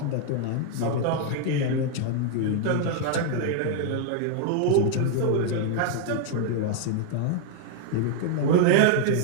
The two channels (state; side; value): different; both; correlation 0.00